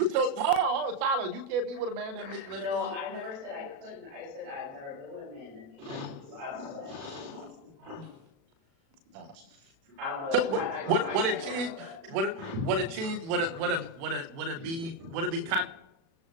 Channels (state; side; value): late; left; 36 ms